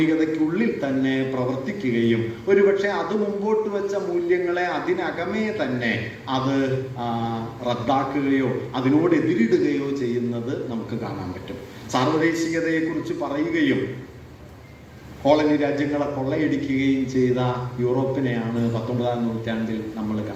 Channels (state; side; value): identical; both; correlation 1.00